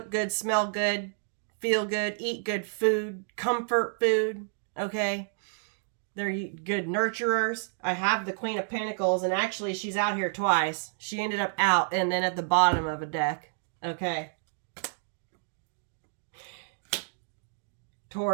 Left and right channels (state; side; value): silent; left; digital silence